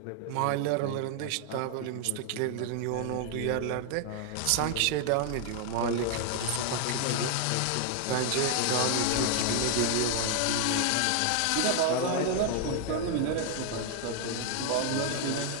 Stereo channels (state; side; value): different; both; correlation 0.00